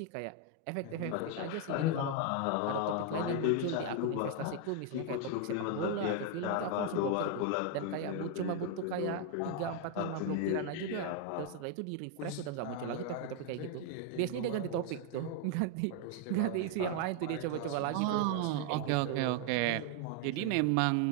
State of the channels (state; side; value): different; both; correlation 0.01